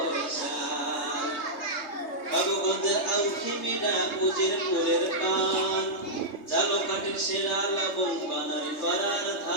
বাবুগঞ্জের আউখিমিডা উজিরপুরের পান ঝালকাঠির সেরা লবণ বানারি পাড়ার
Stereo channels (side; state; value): right; late; 3.3 ms